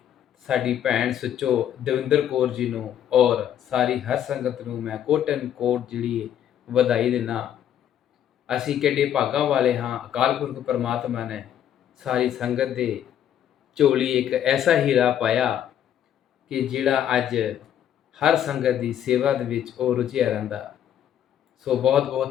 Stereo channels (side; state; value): right; quieter; 10.2 dB